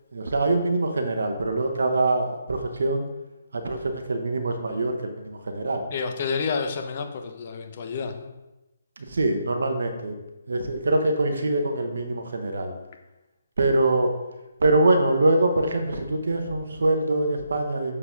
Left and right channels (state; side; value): inverted; both; correlation -0.79